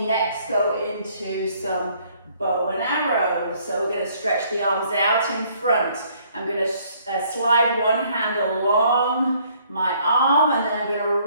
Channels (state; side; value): inverted; both; correlation -0.63